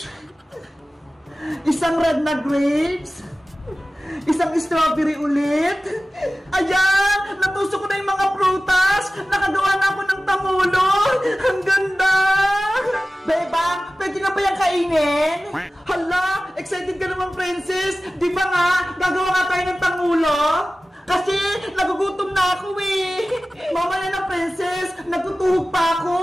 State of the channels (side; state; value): both; normal; correlation 0.96